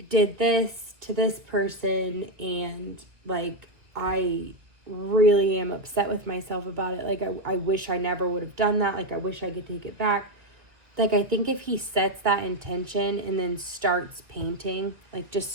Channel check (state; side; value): late; left; 1.7 ms